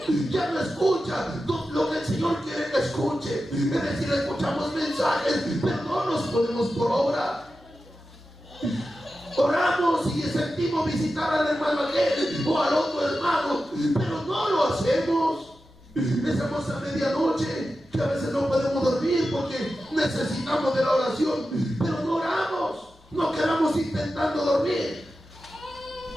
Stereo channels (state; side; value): normal; both; correlation 0.92